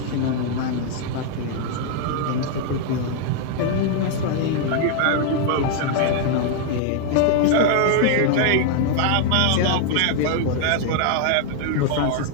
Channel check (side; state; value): both; different; correlation 0.00